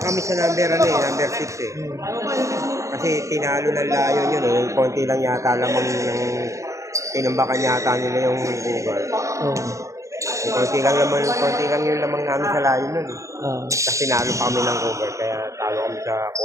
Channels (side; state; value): left; late; 0.15 ms